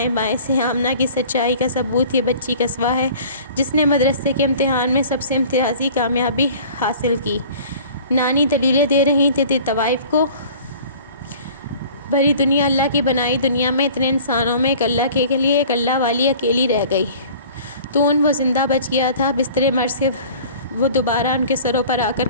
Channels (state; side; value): inverted; both; correlation -0.47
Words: بائیں سے۔ آمنہ کی سچائی کا ثبوت یہ بچی قصوہ ہے، جس نے مدرسے کے امتحان میں سب سے امتیازی کامیابی حاصل کی۔ نانی دلیلیں دے رہی تھی طوائف کو۔ بھری دنیا، اللہ کی بنائی دنیا میں اتنے انسانوں میں ایک اللہ کے لیے ایک اللہ والی اکیلی رہ گئی۔ تو وہ زندہ بچ گیا تھا، بستر مرض سے وہ دوبارہ ان کے سروں پر آ کر